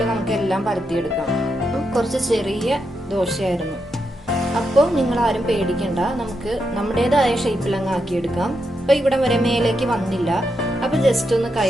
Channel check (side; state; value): both; normal; correlation 0.83